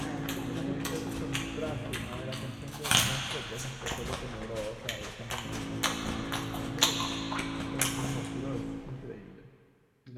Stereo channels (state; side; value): identical; both; correlation 1.00